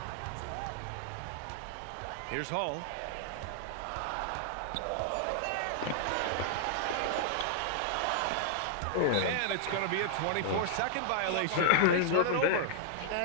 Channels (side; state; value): both; different; correlation -0.01